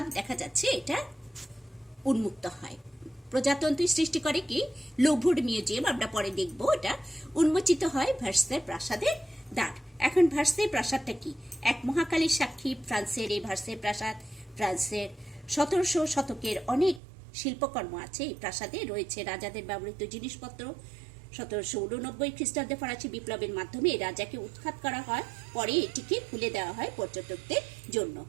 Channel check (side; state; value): left; drops out; at 17.0 s